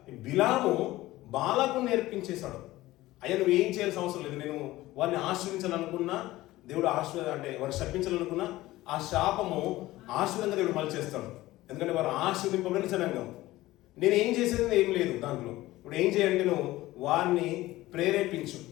బిలాము బాలాకు నేర్పించేశాడు. అయ్యా నువ్వు ఏం చేయాల్సిన అవసరం లేదు, నేను వారిని ఆశ్రయించాలనుకున్నా దేవుడు వారిని శపించాలనుకున్నా ఆ శాపము ఆశీర్వాదంగా దేవుడు మళ్ళీ చేస్తాడు. ఎందుకంటే వారు ఆశీర్వదింపబడిన జనాంగం. నేను ఏం చేసేది ఏం లేదు దాంట్లో. ఇప్పుడు ఏం చేయాలంటే నువ్వు వారిని ప్రేరేపించు,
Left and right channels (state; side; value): quieter; right; 17.3 dB